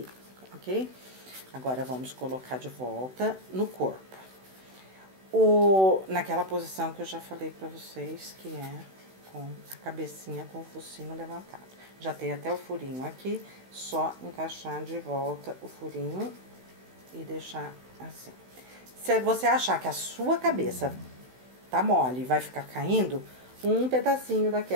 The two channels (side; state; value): left; late; 16 ms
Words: ok? Agora, vamos colocar de volta no corpo. Naquela posição que eu já falei pra vocês, que é com a cabecinha com o focinho levantado. Já tem até o furinho aqui, só encaixar de volta o furinho e deixar assim. Se você achar que a sua cabeça tá mole e vai ficar caindo, um pedacinho